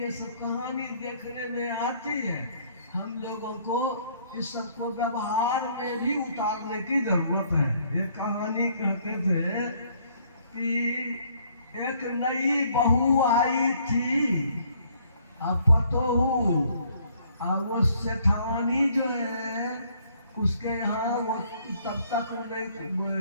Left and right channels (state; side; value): inverted; both; correlation -0.64